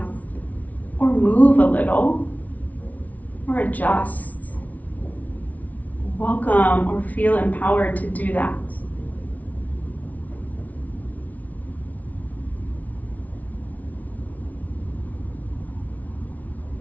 or move a little, or adjust, welcome or feel empowered to do that.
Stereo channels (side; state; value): right; late; 0.073 ms